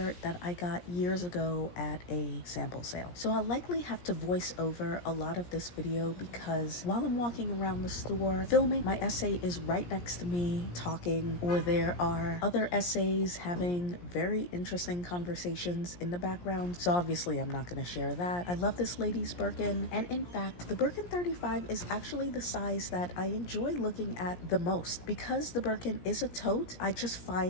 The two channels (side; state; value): right; late; 17 ms